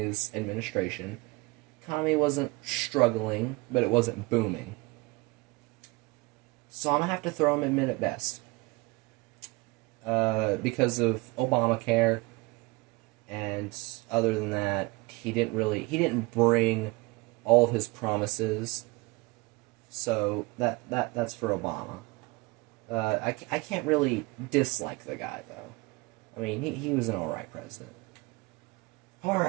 administration. Economy wasn't struggling, but it wasn't booming. So I'm going to have to throw him in mid at best. Because of Obamacare, and other than that, he didn't bring all of his promises. So that's for Obama. I can't really dislike the guy, though. I mean, he was an alright president.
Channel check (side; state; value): left; quieter; 24.8 dB